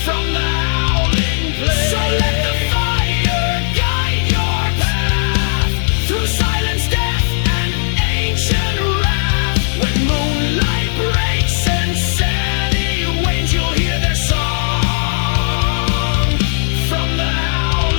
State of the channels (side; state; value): right; silent; digital silence